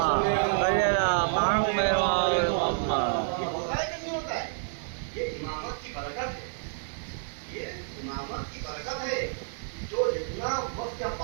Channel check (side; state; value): left; silent; digital silence